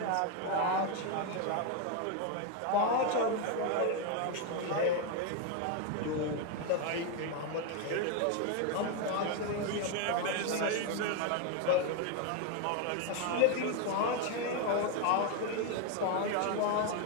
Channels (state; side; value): different; both; correlation 0.02